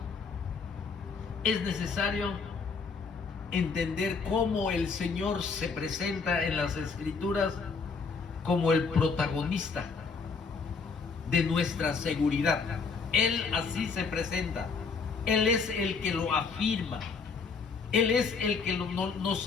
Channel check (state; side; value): quieter; right; 5.0 dB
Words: es necesario entender cómo el Señor se presenta en las Escrituras como el protagonista de nuestra seguridad. Él así se presenta. Él es el que lo afirma. Él es el que nos